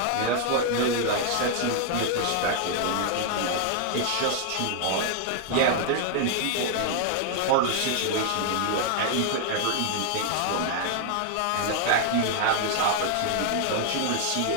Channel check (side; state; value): both; different; correlation 0.00